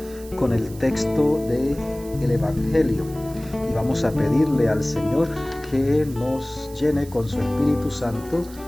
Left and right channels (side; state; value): right; noise; hiss, 20 dB below the sound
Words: con el texto del Evangelio y vamos a pedirle al Señor que nos llene con su Espíritu Santo,